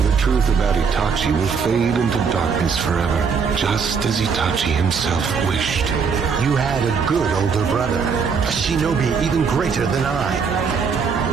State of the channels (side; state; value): left; quieter; 5.8 dB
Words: The truth about Itachi will fade into darkness forever, just as Itachi himself wished. You had a good older brother, a shinobi even greater than I.